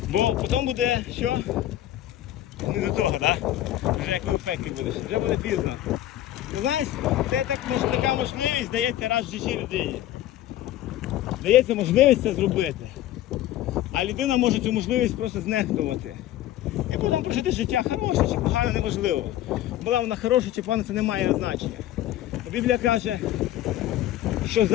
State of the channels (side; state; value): right; quieter; 13.5 dB